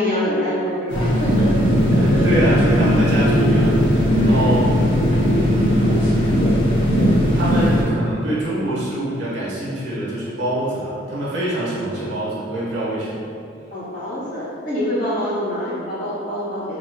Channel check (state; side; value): normal; both; correlation 0.69